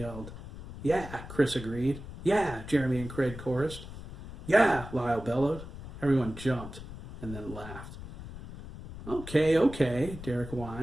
"Yeah," Chris agreed. "Yeah," Jeremy and Craig chorused. "Yeah," Lyle bellowed. Everyone jumped and then laughed. Okay, okay, Derek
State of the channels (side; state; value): left; noise; rumble, 12 dB below the sound